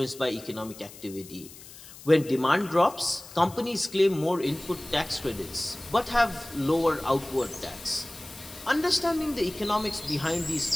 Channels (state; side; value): noise; left; hiss, 17 dB below the sound